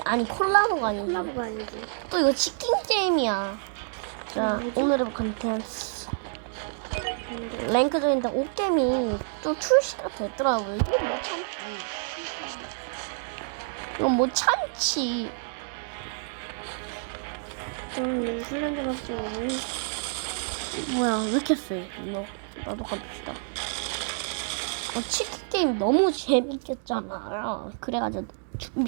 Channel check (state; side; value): silent; left; digital silence